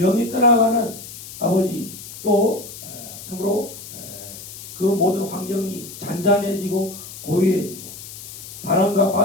떠나가는 아버지 또 참으로 그 모든 환경이 잔잔해지고 고요해지고 바람과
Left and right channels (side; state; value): left; noise; hiss, 13 dB below the sound